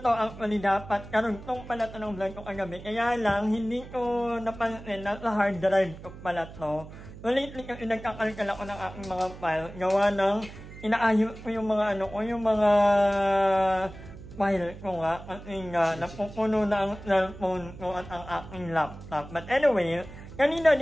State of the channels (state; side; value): noise; right; hum, 15 dB below the sound